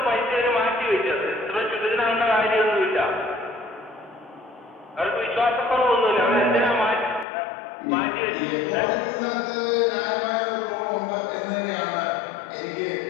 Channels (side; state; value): right; drops out; at 7.2 s